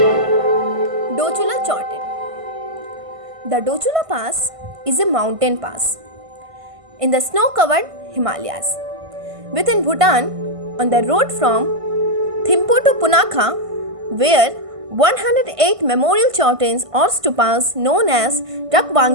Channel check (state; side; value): late; left; 1.5 ms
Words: Dochula Chorten. The Dochula Pass is a mountain pass in the snow-covered Himalayas within Bhutan on the road from Thimphu to Punakha, where 108 memorial chortens or stupas known as Druk